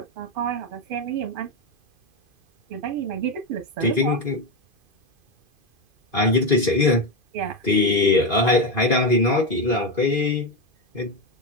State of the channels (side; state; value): left; late; 2.5 ms